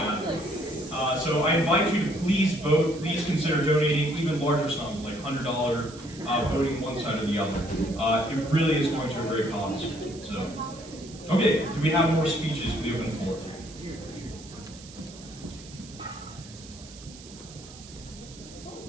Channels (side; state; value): right; noise; hiss, 18 dB below the sound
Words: Advent. So I invite you to please vote. Please consider donating even larger sums, like $100, voting one side or the other. It really is going to a great cause. So, okay, do we have more speeches for the open floor?